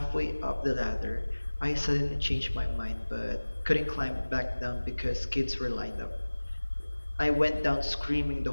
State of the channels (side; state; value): both; inverted; correlation -1.00